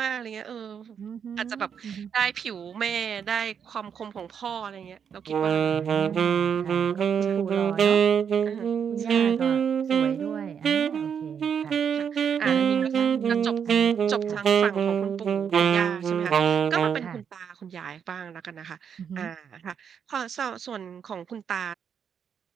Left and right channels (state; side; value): quieter; left; 7.5 dB